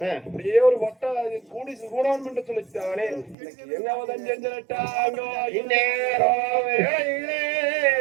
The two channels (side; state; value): left; drops out; at 3.4 s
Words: அப்படியே ஒரு வட்ட கூடி கூடான் என்று சொல்லித்தானே என்ன வதம் செஞ்சிட்டாங்க இந்நேரம்